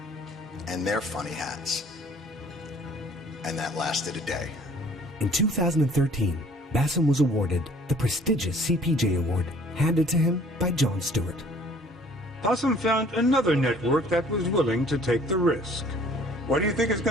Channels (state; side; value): normal; both; correlation 0.54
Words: and their funny hats. And that lasted a day. In 2013, Bassem was awarded the prestigious CPJ Award handed to him by Jon Stewart. Bassem found another network that was willing to take the risk. What do you think is